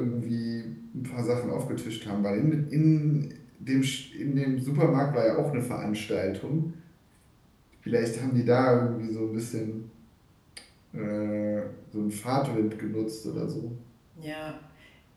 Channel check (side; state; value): both; identical; correlation 1.00